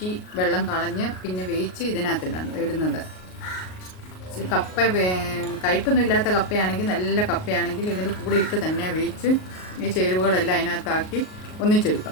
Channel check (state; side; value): late; right; 38 ms